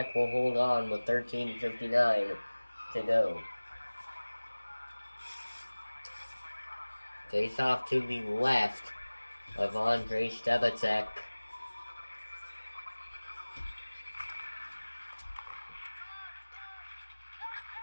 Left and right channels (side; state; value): both; inverted; correlation -1.00